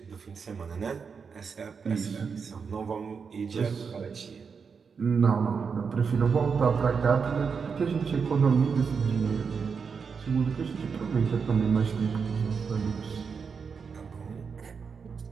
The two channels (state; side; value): quieter; left; 5.8 dB